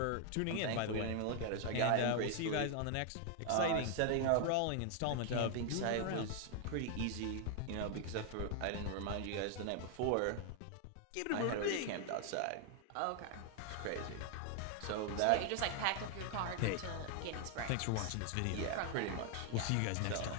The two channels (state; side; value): different; both; correlation 0.00